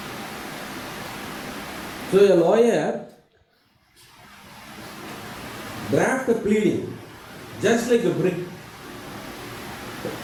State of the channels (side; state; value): both; identical; correlation 1.00